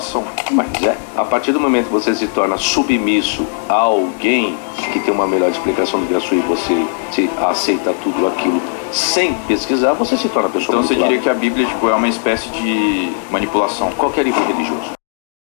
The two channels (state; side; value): silent; right; 67 dB below the other